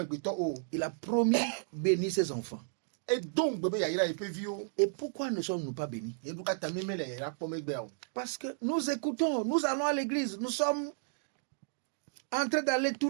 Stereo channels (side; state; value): left; silent; digital silence